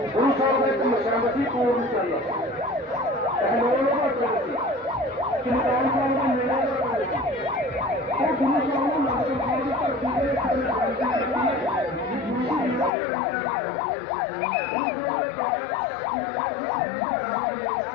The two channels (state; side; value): drops out; right; at 12.9 s